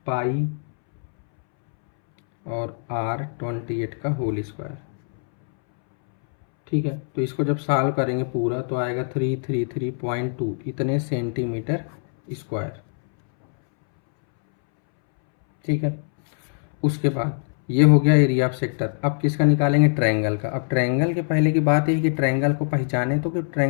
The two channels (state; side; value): silent; right; 63 dB below the other